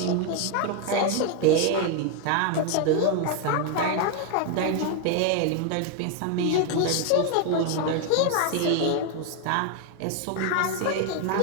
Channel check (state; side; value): different; both; correlation 0.01